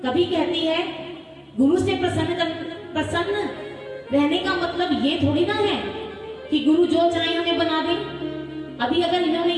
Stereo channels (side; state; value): both; identical; correlation 1.00